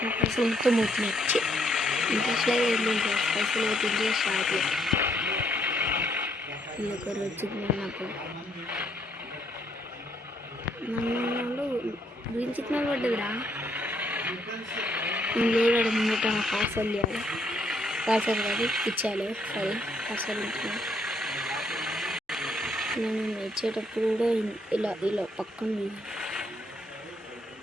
పైసలు మొత్తం అవుతున్నాయి. ఇంట్రెస్ట్ లాగా ఏంటంటే పైసలు అవుతుంది షాప్లో ఒకరు వచ్చింది. నాకు నన్ను గ్రీన్ సిగ్నల్ పడ్డదిరా. నేను లేడాడు ముంగట పార్సల్ చేయాలి. పార్సల్ కాదు ఇచ్చాలి. సరే పార్సల్ ఇచ్చాను. నేను ఇచ్చేటప్పుడు కూడా ఇలా పక్కన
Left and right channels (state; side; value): normal; both; correlation 0.71